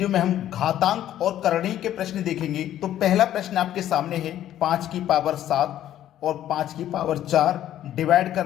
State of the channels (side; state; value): right; quieter; 12.0 dB